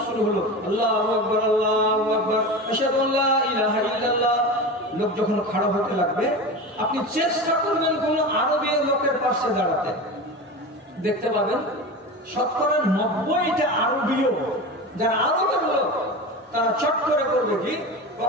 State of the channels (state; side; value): normal; both; correlation 0.27